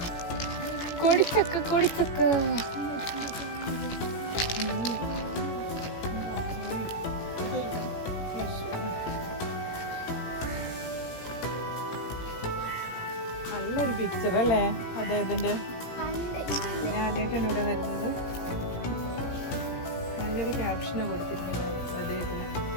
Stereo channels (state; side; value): late; right; 17 ms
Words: കോടിച്ചക്ക കോടിച്ചക്ക. നല്ലൊരു പിക്ചർ അല്ലേ അദ്ദേഹത്തിന്റെ? ഞാൻ ആദ്യമായിട്ടാണ് ഇവിടെ വരുന്നത്. നല്ലൊരു ക്യാപ്ഷനാണ് കൊടുത്തിരിക്കുന്നത് അദ്ദേഹത്തിന്.